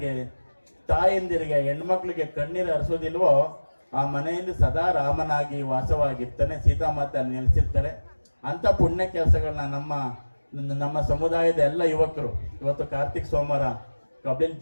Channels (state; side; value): inverted; both; correlation -1.00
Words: ತಾಯಂದಿರಿಗೆ, ಹೆಣ್ಮಕ್ಳಿಗೆ ಕಣ್ಣೀರು ಹರಿಸೋದಿಲ್ವೋ ಆ ಮನೆಯಲ್ಲಿ ಸದಾ ರಾಮನಾಗಿ ವಾಸವಾಗಿರ್ತಾನೆ, ಸೀತಾಮಾತೆ ಅಲ್ಲಿ ನೆಲೆಸಿರ್ತಾರೆ. ಅಂತ ಪುಣ್ಯ ಕೆಲಸಗಳನ್ನ ನಮ್ಮ ಸಮುದಾಯದ ಎಲ್ಲ ಯುವಕರು ಇವತ್ತು ಕಾರ್ತಿಕ್ ಸೋಮವಾರ ಕಬ್ಲಿನ